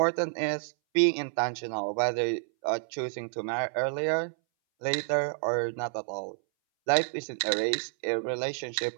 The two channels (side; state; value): left; silent; 58 dB below the other